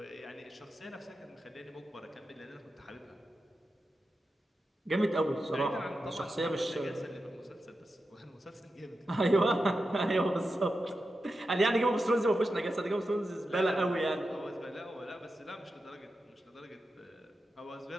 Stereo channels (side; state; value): both; normal; correlation 0.90